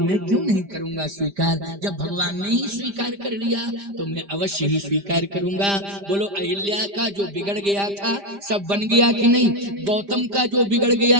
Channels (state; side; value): late; left; 5.0 ms